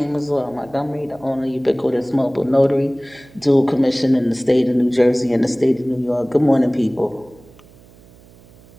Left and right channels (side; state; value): right; noise; hum, 25 dB below the sound